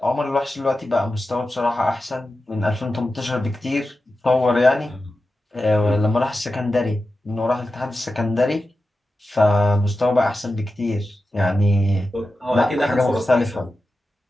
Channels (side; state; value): both; normal; correlation 0.92